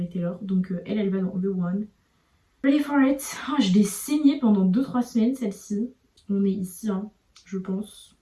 Taylor. Donc elle va dans The One. Ready for It, oh, je l'ai saignée pendant 2-3 semaines celle-ci. On est ici, hein, je pense.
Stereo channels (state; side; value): identical; both; correlation 1.00